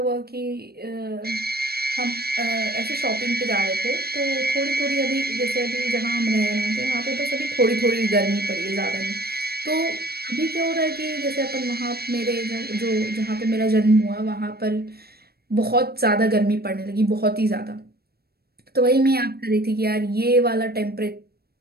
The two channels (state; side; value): late; left; 0.46 ms